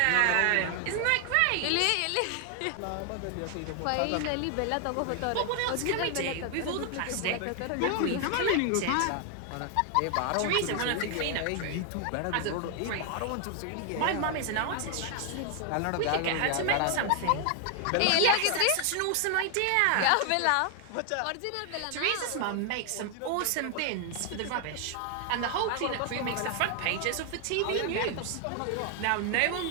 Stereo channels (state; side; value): different; both; correlation 0.00